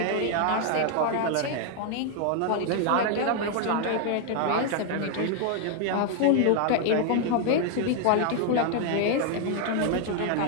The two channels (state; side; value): different; both; correlation 0.00